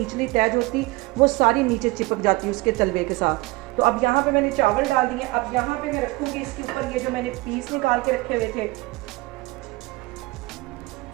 तह होती वो सारी नीचे चिपक जाती है उसके तलवे के साथ। तो अब यहाँ पे मैंने चावल डाल दिए। अब यहाँ पे मैं रखूँगी इसके ऊपर ये जो मैंने पीस निकाल के रखे हुए थे।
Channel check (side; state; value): left; quieter; 22.0 dB